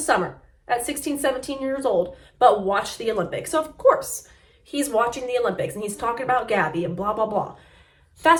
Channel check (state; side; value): identical; both; correlation 1.00